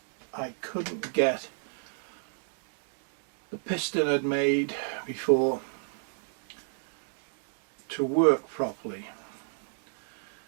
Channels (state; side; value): silent; left; digital silence